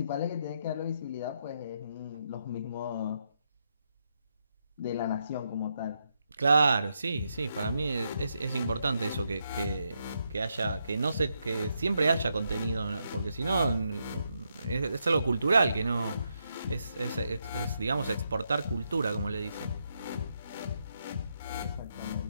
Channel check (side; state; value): both; inverted; correlation -0.80